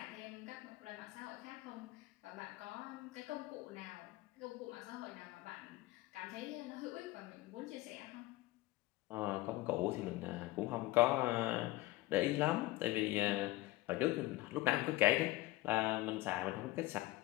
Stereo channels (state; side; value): quieter; right; 18.5 dB